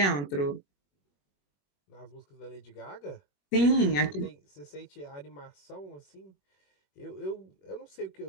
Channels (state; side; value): late; right; 21 ms